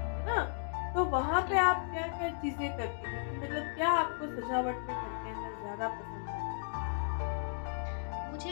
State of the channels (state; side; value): silent; right; digital silence